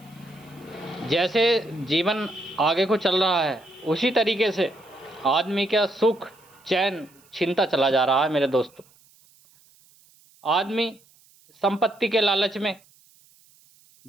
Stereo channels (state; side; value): noise; right; hiss, 30 dB below the sound